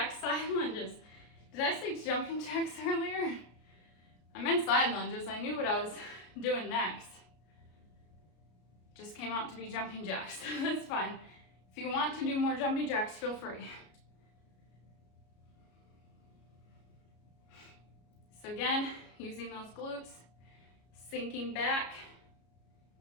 side lunges. Did I say jumping jacks earlier? I meant side lunges. I knew what I was doing next. Just came out to be jumping jacks. That's fine. If you want to do more jumping jacks, feel free. So again, using those glutes, sinking back,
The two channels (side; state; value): right; late; 33 ms